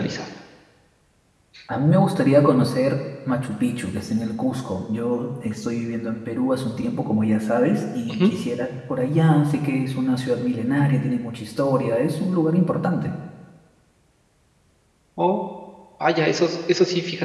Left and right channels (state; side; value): identical; both; correlation 1.00